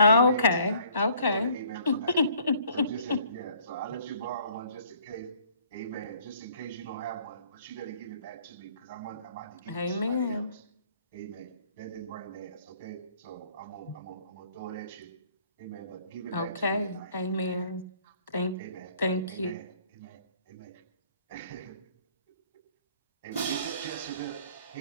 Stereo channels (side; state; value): both; inverted; correlation -0.59